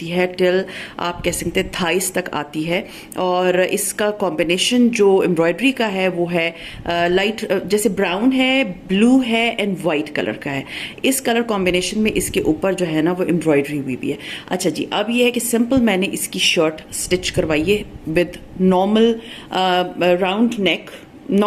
है टिल आप कह सकते हैं थाइस तक आती है। और इसका कॉम्बिनेशन जो एम्ब्रॉयडरी का है वो है लाइट जैसे ब्राउन है, ब्लू है एंड वाइट कलर का है। इस कलर कॉम्बिनेशन में इसके ऊपर जो है ना वो एम्ब्रॉयडरी हुई भी है। अच्छा जी, अब ये है कि सिंपल मैंने इसकी शर्ट स्टिच करवाई है with normal round neck,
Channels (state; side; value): identical; both; correlation 1.00